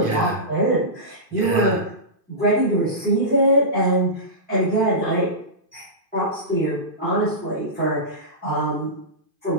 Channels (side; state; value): left; late; 2.5 ms